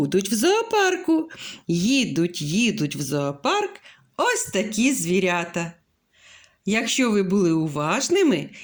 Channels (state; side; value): identical; both; correlation 1.00